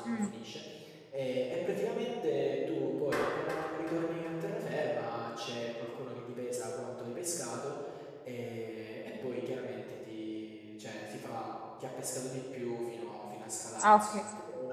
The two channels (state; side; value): identical; both; correlation 1.00